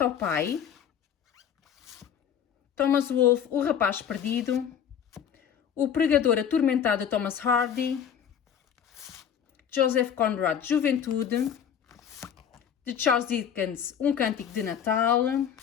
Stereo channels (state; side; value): quieter; right; 8.5 dB